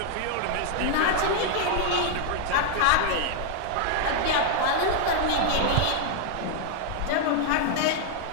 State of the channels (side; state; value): both; different; correlation 0.00